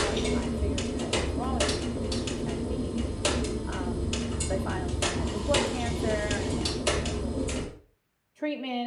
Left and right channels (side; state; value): both; identical; correlation 1.00